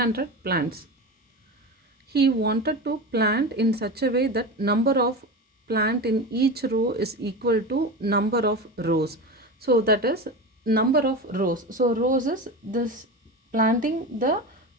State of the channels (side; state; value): both; normal; correlation 0.25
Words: plants. He wanted to plant in such a way that number of plant in each row is equal to number of rows. So that is number of rows. So rows is this planting the